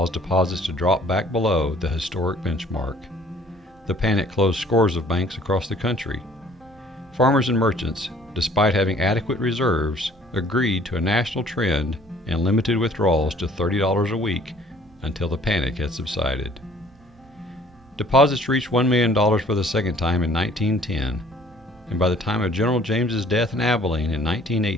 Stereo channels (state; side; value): normal; both; correlation 0.55